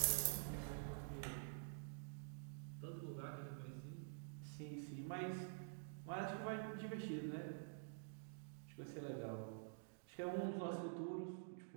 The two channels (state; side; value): silent; left; digital silence